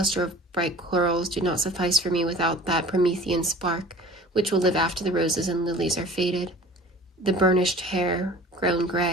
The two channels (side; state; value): both; normal; correlation 0.44